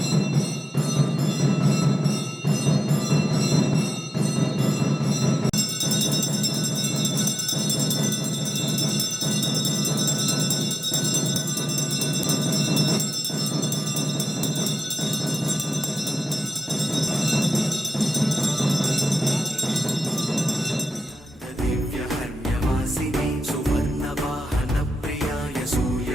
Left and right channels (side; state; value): both; normal; correlation 0.91